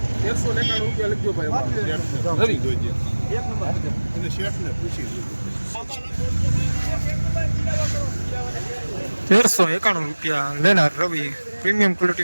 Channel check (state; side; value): inverted; both; correlation -1.00